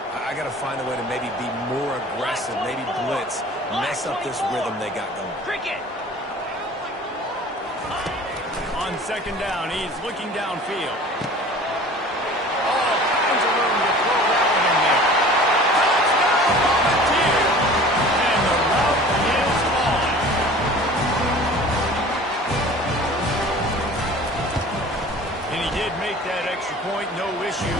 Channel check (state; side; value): normal; both; correlation 0.44